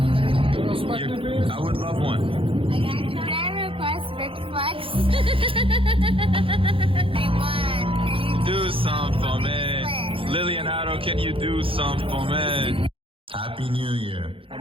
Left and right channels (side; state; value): left; late; 0.26 ms